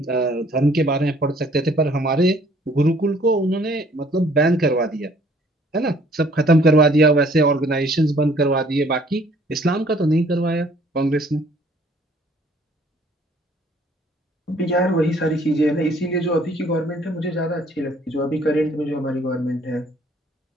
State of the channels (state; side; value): normal; both; correlation 0.59